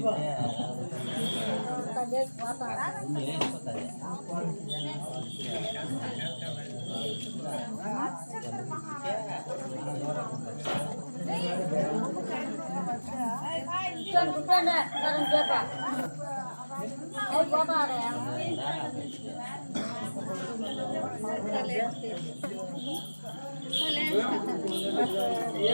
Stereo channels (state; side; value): inverted; both; correlation -1.00